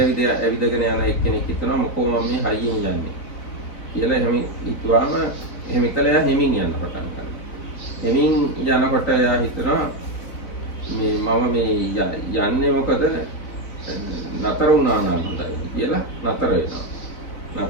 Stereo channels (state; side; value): late; right; 4.0 ms